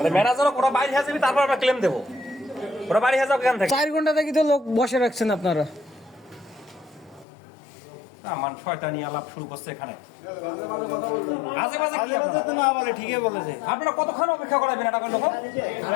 ম্যানেজারক ওরা বাইরে হয়ে যাবে, তারপর আমরা ক্লেম দেবো। ওরা বাইরে হয়ে যাবে এখান থেকে। 4 ঘন্টা থেকে তো লোক বসে রাখছেন আপনারা। না মান শয়তানি আলাপ শুরু করছে এখানে। আজে বাজে কি আপনারা? না বলে ঠিকই বলেছে। আপনারা কতক্ষণ অপেক্ষা করাবেন এটা লোক?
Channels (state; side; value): drops out; right; at 7.2 s